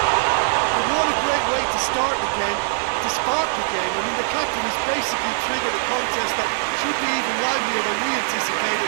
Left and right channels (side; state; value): left; silent; digital silence